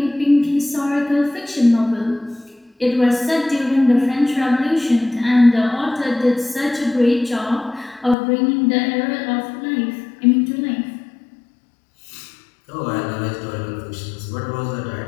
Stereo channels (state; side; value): drops out; right; at 8.2 s